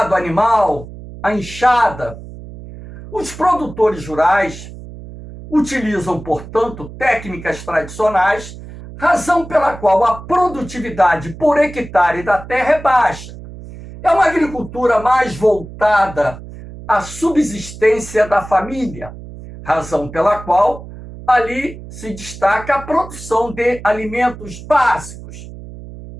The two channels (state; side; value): noise; right; hum, 14 dB below the sound